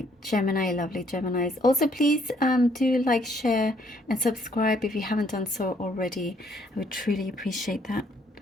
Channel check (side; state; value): both; normal; correlation 0.67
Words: Gemini, lovely Geminis. Also, please do like, share, and subscribe if you haven't done so already. I would truly appreciate that.